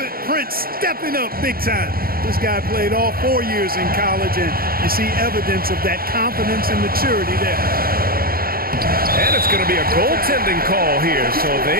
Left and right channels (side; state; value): left; late; 0.43 ms